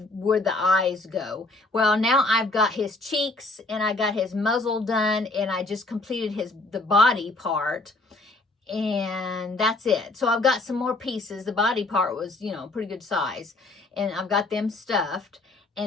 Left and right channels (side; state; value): right; quieter; 3.1 dB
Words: where the eyes go. Well, now I've got his cheeks and I got his muzzle done, and I just completed the body part, and that's it. So I've got some more pieces. The body part was, pretty good size, and I've got them stuffed.